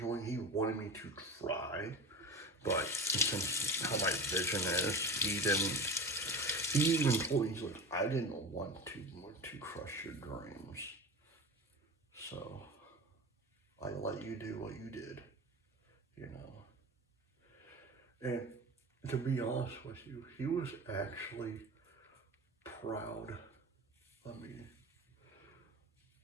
He wanted me to try, but since how my vision is, he didn't. He even told me, he's like, I didn't want to crush your dreams, so I let you do what you did, you know. And to be honest with you, he was actually proud of me.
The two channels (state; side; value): normal; both; correlation 0.31